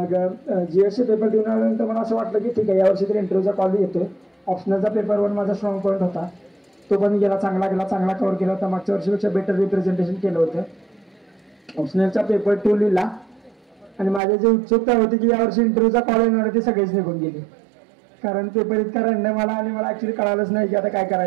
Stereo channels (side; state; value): left; drops out; at 14.2 s